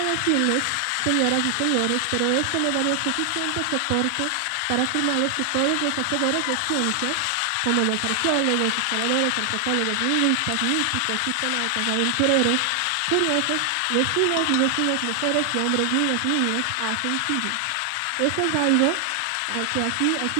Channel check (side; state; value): both; different; correlation 0.00